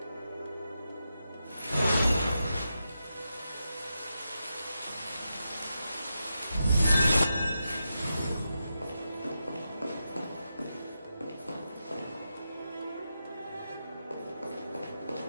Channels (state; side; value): inverted; both; correlation -0.88